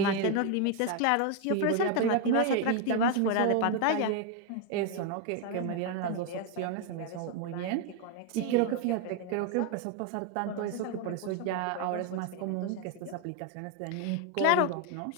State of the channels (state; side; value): different; both; correlation 0.01